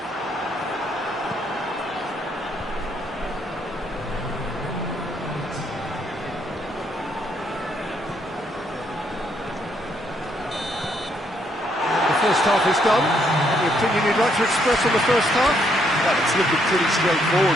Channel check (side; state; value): both; normal; correlation 0.72